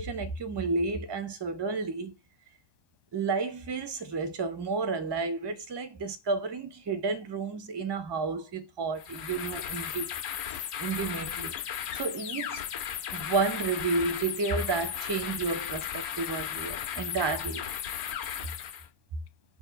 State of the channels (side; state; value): left; late; 1.2 ms